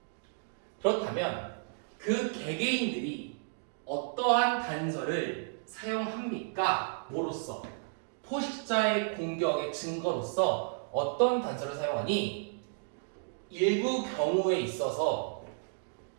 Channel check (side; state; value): left; silent; digital silence